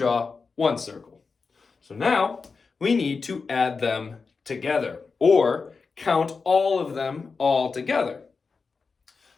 1 circle. So now we need to add them together, or count all of them all together.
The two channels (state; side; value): quieter; right; 4.7 dB